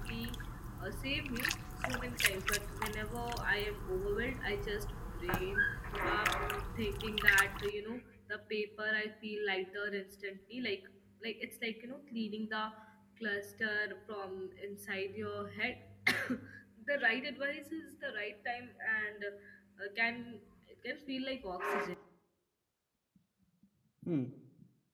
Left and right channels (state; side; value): identical; both; correlation 1.00